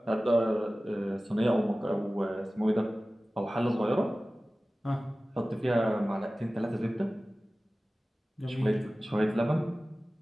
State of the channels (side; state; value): both; normal; correlation 0.97